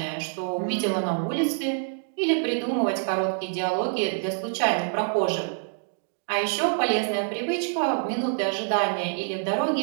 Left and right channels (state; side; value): silent; left; digital silence